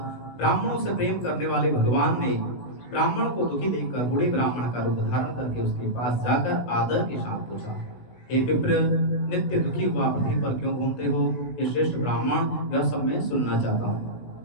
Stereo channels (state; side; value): late; right; 17 ms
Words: ब्राह्मणों से प्रेम करने वाले भगवान ने ब्राह्मण को दुखी देखकर बूढ़े ब्राह्मण का रूप धारण करके उसके पास जाकर आदर के साथ पूछा, हे विप्र, नित्य दुखी हुआ पृथ्वी पर क्यों घूमते हो? हे श्रेष्ठ ब्राह्मण, यह सब मैं सुनना चाहता हूँ।